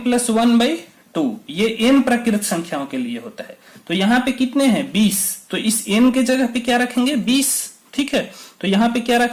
प्लस 1/2, ये n प्राकृत संख्याओं के लिए होता है। तो यहाँ पे कितने हैं, 20, तो इस n के जगह पे क्या रखेंगे, 20, ठीक है। तो यहाँ पे क्या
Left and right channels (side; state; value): both; identical; correlation 1.00